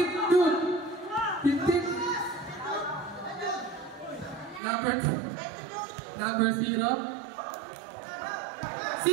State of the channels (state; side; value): drops out; left; at 4.6 s